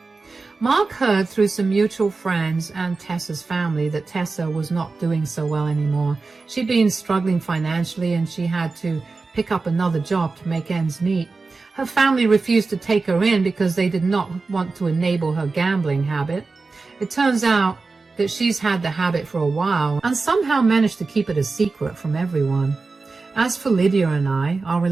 Mark heard through some mutual friends and Tessa's family that Tessa was not doing so well anymore. She'd been struggling financially, and she had to pick up another job to make ends meet. Her family refused to take her in because they did not want to enable her gambling habit. It turns out that she's had the habit for a while and somehow managed to keep it a secret from everyone. As for Lydia and I, our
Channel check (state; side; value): quieter; left; 4.0 dB